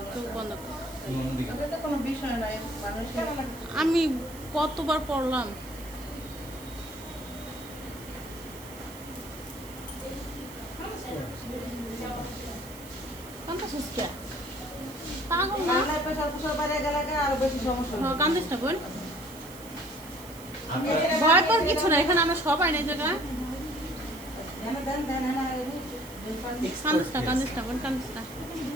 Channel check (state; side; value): noise; right; hiss, 17 dB below the sound